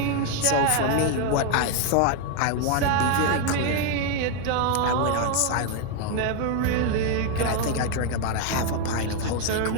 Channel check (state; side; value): different; both; correlation 0.01